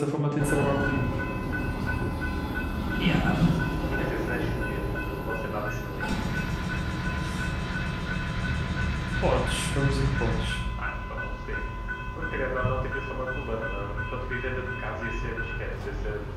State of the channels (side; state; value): both; identical; correlation 1.00